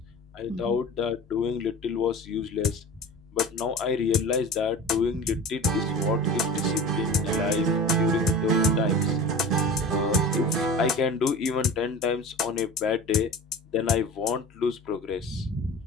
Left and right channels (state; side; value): normal; both; correlation 0.35